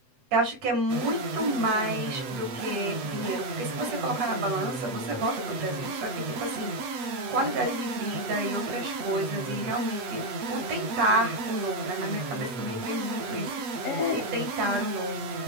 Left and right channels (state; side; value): late; left; 7.9 ms